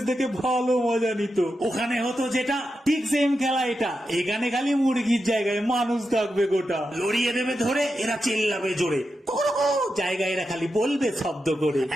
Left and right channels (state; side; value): normal; both; correlation 0.88